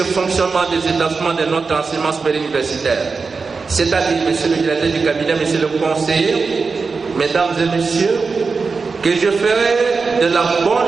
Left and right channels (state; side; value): quieter; left; 4.6 dB